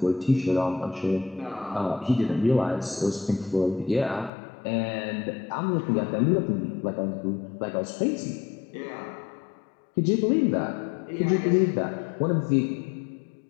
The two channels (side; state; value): right; drops out; at 4.3 s